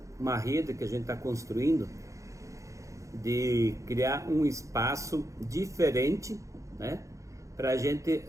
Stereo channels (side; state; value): left; late; 0.15 ms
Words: rede que a gente está construindo de criar um espaço diferente, né, para a gente